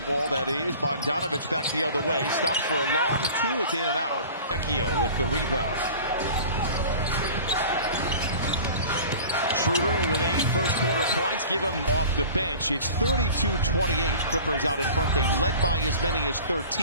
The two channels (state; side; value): inverted; both; correlation -0.41